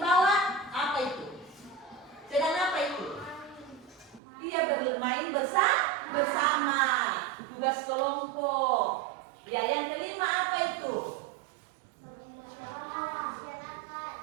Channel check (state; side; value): drops out; left; at 4.2 s